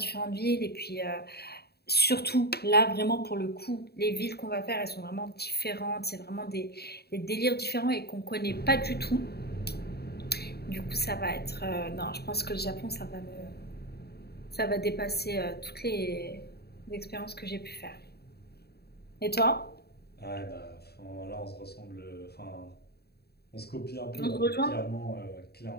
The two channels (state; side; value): late; right; 0.47 ms